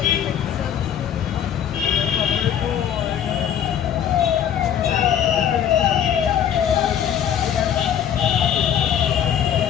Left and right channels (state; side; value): quieter; right; 9.4 dB